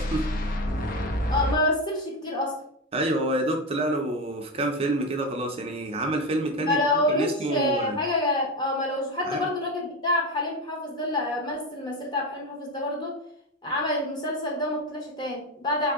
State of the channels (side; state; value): both; normal; correlation 0.17